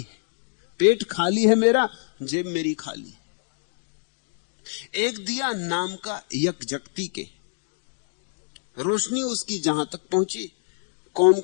पेट खाली है मेरा, जेब मेरी खाली। एक दिया नाम का यकजगती के, रोशनी उसकी जहां तक पहुंची, कौम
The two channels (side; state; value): right; silent; digital silence